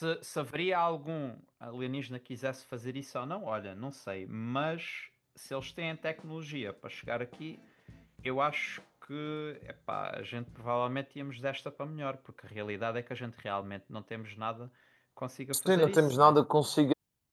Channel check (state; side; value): identical; both; correlation 1.00